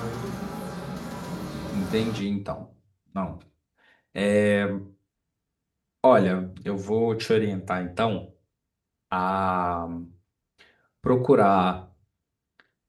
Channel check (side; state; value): both; identical; correlation 1.00